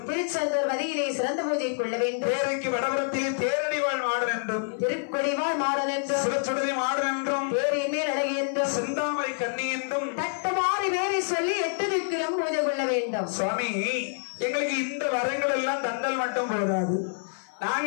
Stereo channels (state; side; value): silent; right; 56 dB below the other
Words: திருச்செந்தூர் வதியிலே சிறந்த பூஜை கொள்ள வேண்டும், தேரைக்கு வடபுறத்திலே தேரடிவாழ் மாடன் என்றும், திருக்கொடிவாழ் மாடன் என்றும், சிவச்சுடதி மாடன் என்றும், தேரின் மேல் அழகி என்றும், செந்தாமரை கண்ணி என்றும் தட்டுமாறி வேறி சொல்லி 8 திக்கிலும் பூஜை கொள்ள வேண்டும். சுவாமி, எங்களுக்கு இந்த வரங்கள் எல்லாம் தண்டல் மட்டும் போதாது.